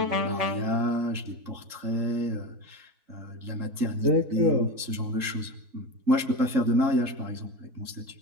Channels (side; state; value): left; late; 3.7 ms